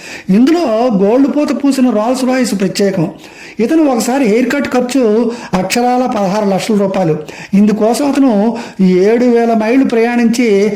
ఇందులో గోల్డ్ పూత పూసిన రోల్స్ రాయిస్ ప్రత్యేకం. ఇతను ఒకసారి హెయిర్ కట్ ఖర్చు అక్షరాల 16 లక్షల రూపాయలు. ఇందుకోసం అతను 7,000 మైళ్ళు ప్రయాణించి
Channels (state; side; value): identical; both; correlation 1.00